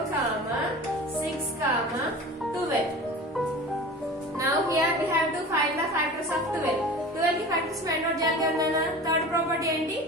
6 12. Now here we have to find the factors of 12. 12 की factors find out చేయాలి కదా. Third property ఏంటి?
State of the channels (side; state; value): both; normal; correlation 0.36